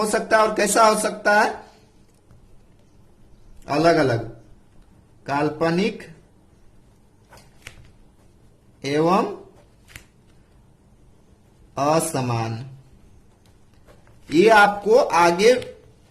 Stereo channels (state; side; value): identical; both; correlation 1.00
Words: सकता है। और कैसा हो सकता है, अलग अलग, काल्पनिक एवं असमान। ये आपको आगे